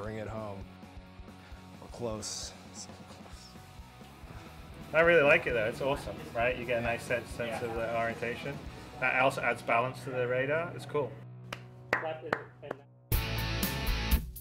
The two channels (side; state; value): both; identical; correlation 1.00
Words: it home. We're close. So close. I really like it though. It's awesome, right? You get a nice sense of the orientation. That also adds balance to the radar. It's cool.